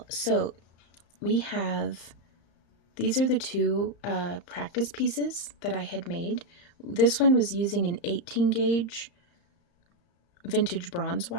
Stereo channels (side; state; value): right; late; 35 ms